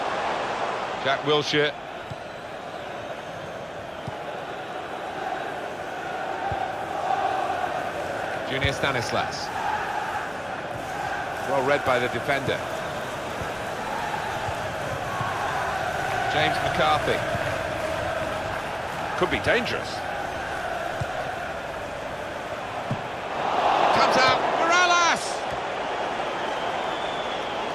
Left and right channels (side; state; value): both; identical; correlation 1.00